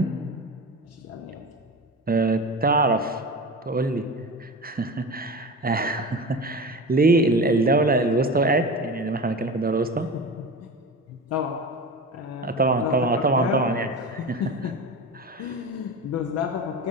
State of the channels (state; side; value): normal; both; correlation 0.29